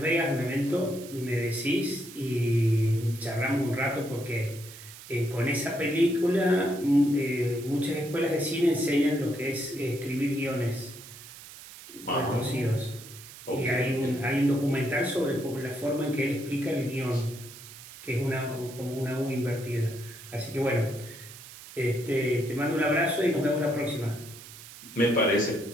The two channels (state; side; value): noise; right; hiss, 16 dB below the sound